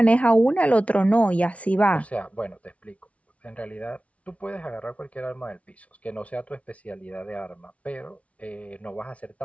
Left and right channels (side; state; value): right; late; 0.065 ms